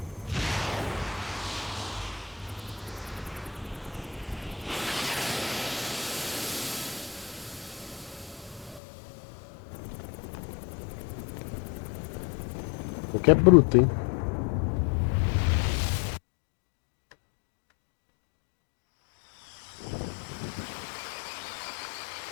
O que é bruto, hein?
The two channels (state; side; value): drops out; right; at 8.8 s